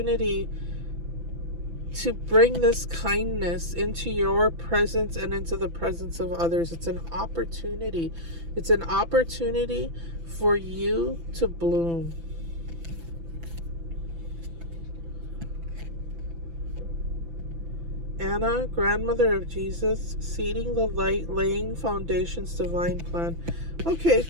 to bring this kindness into your presence and into the presence of others. It's an opportunity. It's an opportunity for you to bloom. Anna, grandmother of Jesus, seeding the light, laying foundations, divine plan. Okay,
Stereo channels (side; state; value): left; late; 6.0 ms